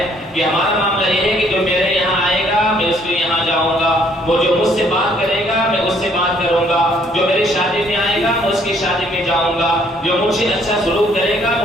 کہ ہمارا معاملہ یہ ہے کہ جو میرے یہاں آئے گا میں اس کے یہاں جاؤں گا، وہ جو مجھ سے بات کرے گا میں اس سے بات کروں گا، جو میری شادی میں آئے گا میں اس کی شادی میں جاؤں گا، جو مجھ سے اچھا سلوک کرے گا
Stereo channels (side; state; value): both; normal; correlation 0.64